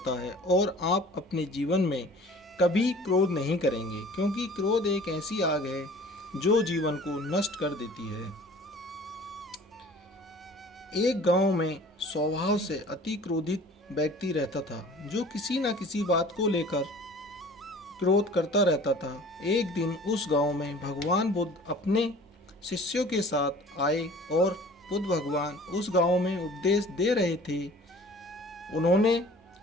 है और आप अपने जीवन में कभी क्रोध नहीं करेंगे, क्योंकि क्रोध एक ऐसी आग है जो जीवन को नष्ट कर देती है। एक गांव में स्वभाव से अति क्रोधित व्यक्ति रहता था, जो किसी न किसी बात को लेकर क्रोध करता रहता था। एक दिन उस गांव में भगवान बुद्ध अपने शिष्यों के साथ आए और बुद्ध भगवान उस गांव में उपदेश दे रहे थे। उन्होंने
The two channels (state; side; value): normal; both; correlation 0.47